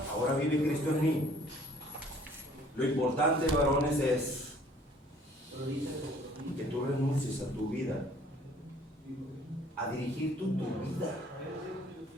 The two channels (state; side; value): normal; both; correlation 0.56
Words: Ahora vive Cristo en mí. Lo importante, varones, es que tú renuncies a tu vida, a dirigir tu vida.